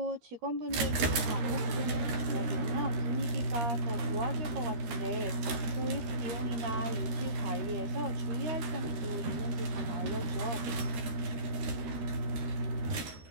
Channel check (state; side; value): late; left; 13 ms